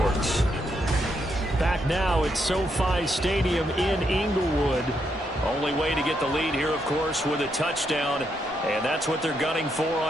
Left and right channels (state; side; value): normal; both; correlation 0.79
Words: Back now at SoFi Stadium in Inglewood. Only way to get the lead here, of course, with a touchdown. And that's what they're gunning for